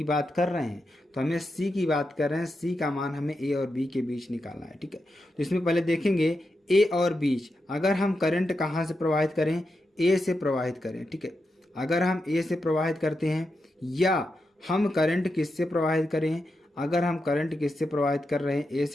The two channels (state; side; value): normal; both; correlation 0.87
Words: बात कर रहे हैं तो हमें सी की बात कर रहे हैं, सी का मान हमें ए और बी के बीच निकालना है। ठीक है, तो इसमें पहले देखेंगे ए और बीच, अगर हम करंट कहाँ से प्रवाहित करें, ए से प्रवाहित करें। ठीक है, अगर हम ए से प्रवाहित करते हैं, या हम करंट किससे प्रवाहित करें, अगर हम करंट किससे प्रवाहित कर रहे हैं, ए